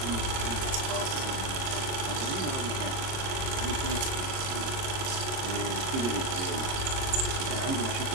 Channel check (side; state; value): left; late; 24 ms